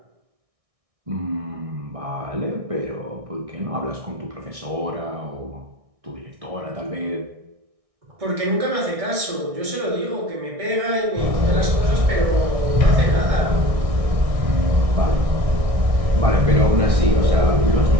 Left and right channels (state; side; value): late; left; 1.6 ms